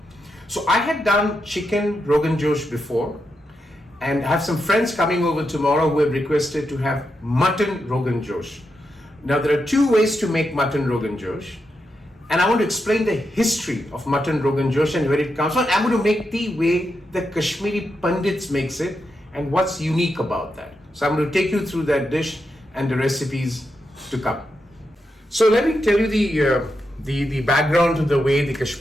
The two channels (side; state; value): both; normal; correlation 0.85